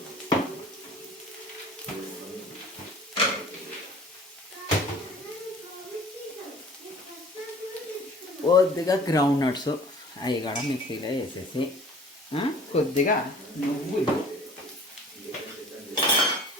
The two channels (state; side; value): normal; both; correlation 0.48